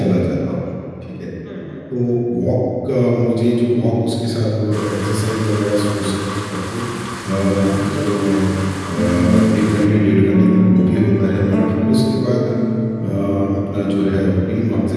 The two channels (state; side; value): identical; both; correlation 1.00